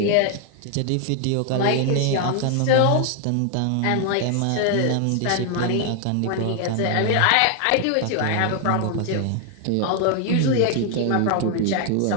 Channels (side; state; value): both; different; correlation 0.00